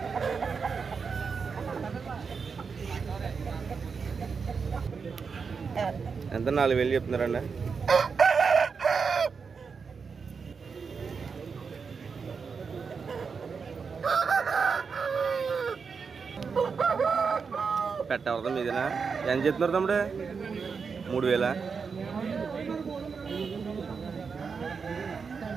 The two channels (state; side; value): quieter; left; 5.5 dB